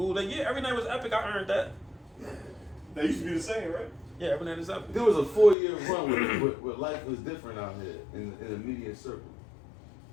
Like, yeah, every night was epic. I earned that. That used to be the same, right? Yeah, every night is epic. There was a 4-year run where life was different out here in the media circle.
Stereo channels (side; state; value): right; drops out; at 5.6 s